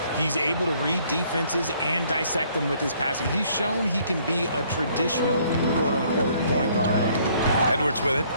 He's able to read defenses and dissect them with his passing. He's shown he can be a traditional, quote-unquote, point guard. Edwards with it.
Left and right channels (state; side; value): inverted; both; correlation -0.63